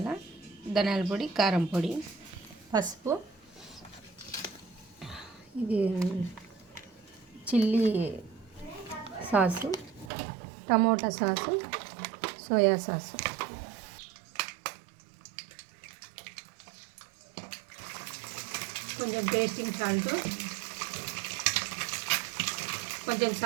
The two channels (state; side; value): drops out; left; at 10.1 s